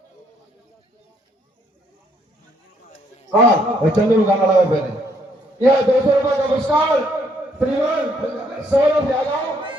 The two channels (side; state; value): both; normal; correlation 0.69